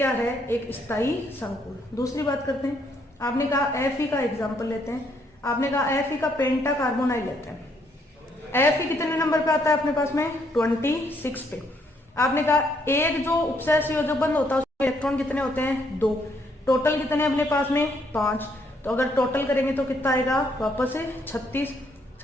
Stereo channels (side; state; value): both; normal; correlation 0.71